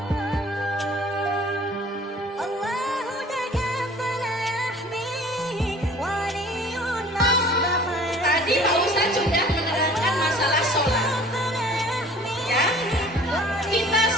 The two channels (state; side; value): normal; both; correlation 0.49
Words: Tadi Pak Ustadz sudah menerangkan masalah sholat, ya. Kita